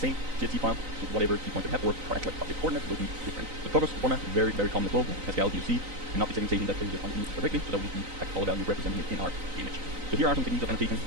same CSV file, so whatever key points you have, or correct like object coordinates will be different. The progress format is very, very common as well. Pascal UC, and not the segmentation that places it on the image directly, so that we can have color value representing it in our image. So here are some techniques of annotation.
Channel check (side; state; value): left; late; 3.9 ms